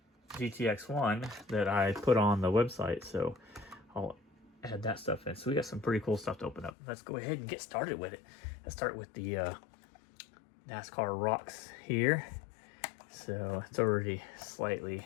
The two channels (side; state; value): right; drops out; at 6.7 s